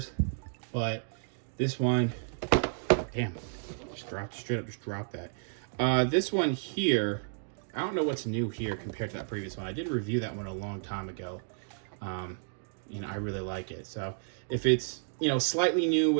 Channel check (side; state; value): left; silent; digital silence